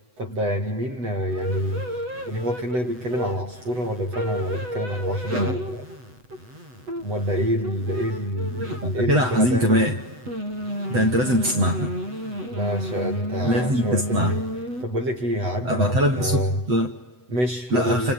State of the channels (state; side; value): late; left; 8.0 ms